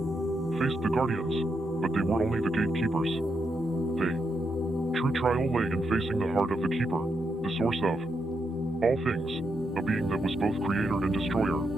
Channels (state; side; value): normal; both; correlation 0.82